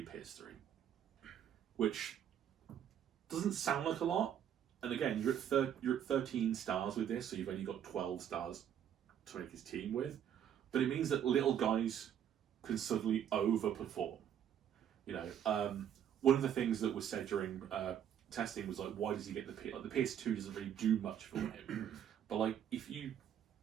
Pierce 3. Which doesn't sound like a lot, and again, you're at 13 stars with this, so you've only got 12 stars to make his team with. But it means that little guys can suddenly overperform. One of the things that was said during testing was like, why does he get the PS? Like, the PS2 doesn't really do much for him. But like, if you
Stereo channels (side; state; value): left; quieter; 9.5 dB